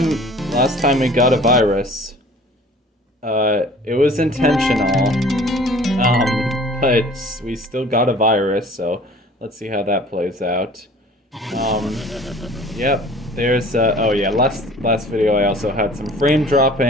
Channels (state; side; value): normal; both; correlation 0.48